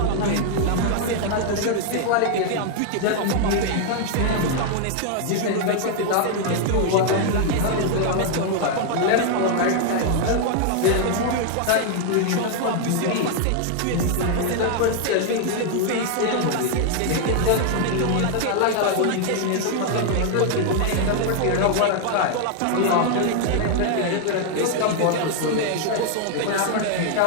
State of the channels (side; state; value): both; different; correlation 0.00